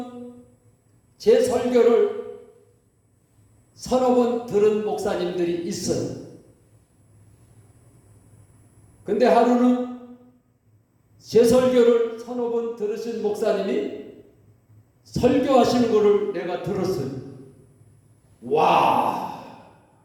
제 설교를 서너 번 들은 목사님들이 있어요. 근데 하루는 제 설교를 서너 번 들으신 목사님이 설교하시는 거를 내가 들었어요. 와!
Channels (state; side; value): identical; both; correlation 1.00